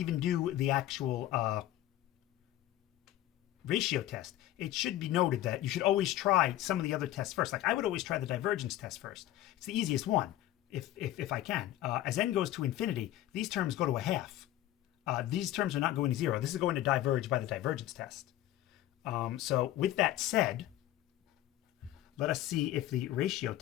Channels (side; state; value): right; quieter; 13.9 dB